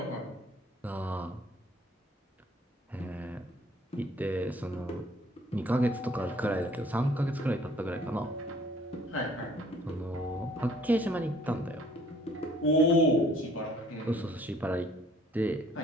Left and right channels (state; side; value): normal; both; correlation 0.58